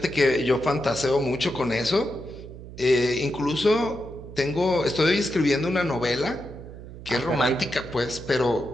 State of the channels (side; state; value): right; noise; hum, 14 dB below the sound